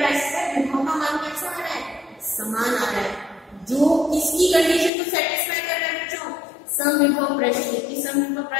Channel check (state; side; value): drops out; right; at 4.9 s